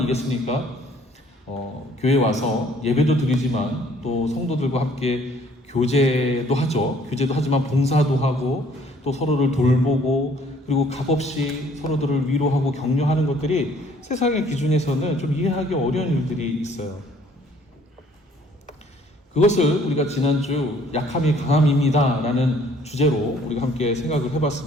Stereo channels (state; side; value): normal; both; correlation 0.59